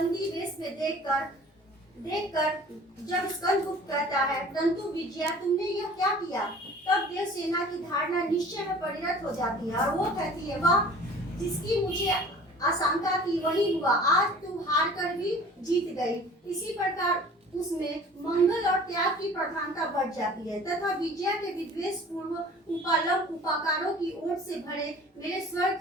वेश में देखकर जब स्कंदगुप्त कहता है, परंतु विजया तुमने यह क्या किया, तब देवसेना की धारणा निश्चय में परिणत हो जाती है और वो कहती है, वाह, जिसकी मुझे आशंका थी वही हुआ, आज तू हार कर भी जीत गई। इसी प्रकार उसमें मंगल और त्याग की प्रधानता बढ़ जाती है तथा विजया के विद्वेष पूर्व उपालंब उपाकारों की ओर से भरे मेरे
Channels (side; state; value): both; normal; correlation 0.47